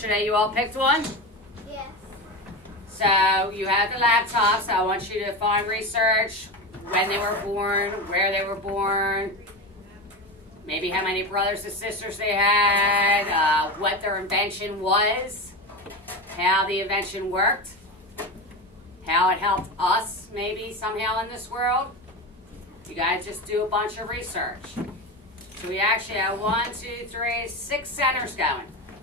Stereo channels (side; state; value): both; normal; correlation 0.22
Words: you all picked one? Yes. So you have the laptops. I want you to find research, when they were born, where they were born, maybe how many brothers and sisters they had, what their invention was, how the invention worked, how it helped us maybe somehow in this world. You guys just do a bunch of research. So we actually have 1, 2, 3, 6 centers going.